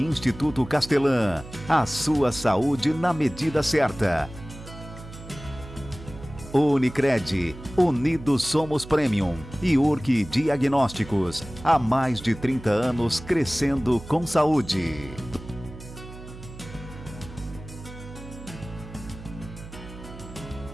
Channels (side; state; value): right; noise; hum, 15 dB below the sound